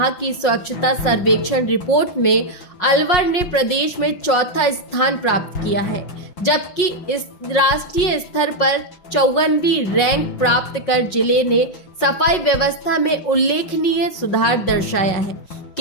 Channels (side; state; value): right; late; 5.5 ms